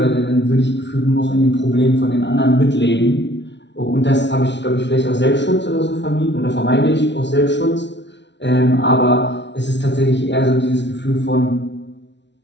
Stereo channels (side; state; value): right; late; 0.51 ms